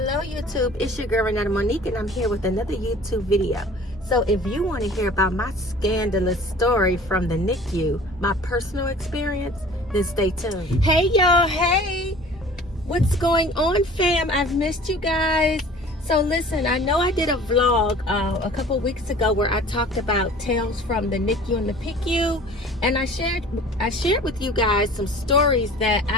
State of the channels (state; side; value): normal; both; correlation 0.46